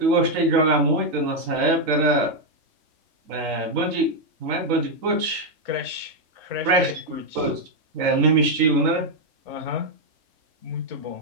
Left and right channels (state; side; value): late; left; 3.8 ms